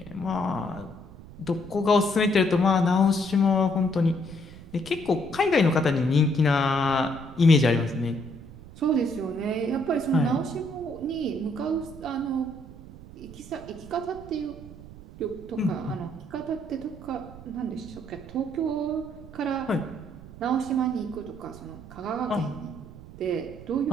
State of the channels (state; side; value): noise; right; rumble, 17 dB below the sound